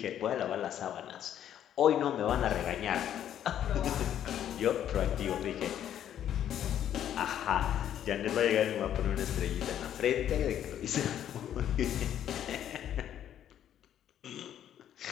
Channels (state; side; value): quieter; right; 10.5 dB